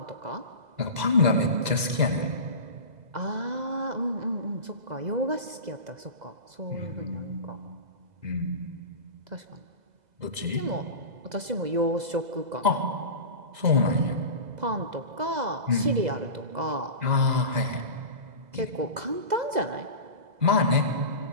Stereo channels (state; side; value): late; left; 2.0 ms